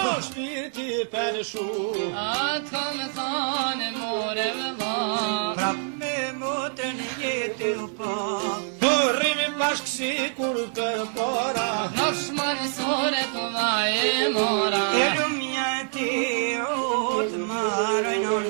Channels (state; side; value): silent; left; 60 dB below the other